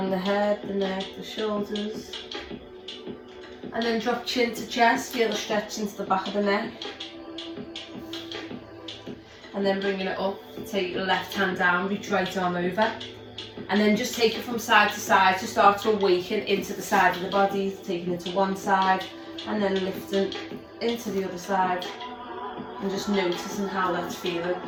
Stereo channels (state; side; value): identical; both; correlation 1.00